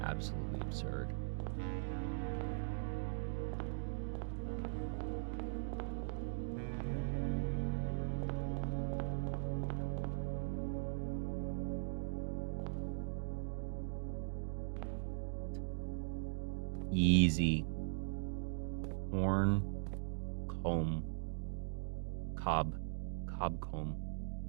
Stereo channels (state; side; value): silent; left; digital silence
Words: Absolutely absurd. Easy. Horn, comb, cob comb.